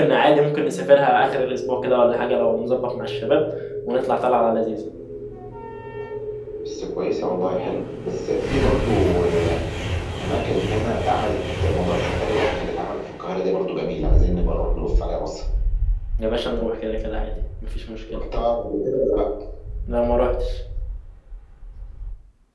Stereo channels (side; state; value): both; identical; correlation 1.00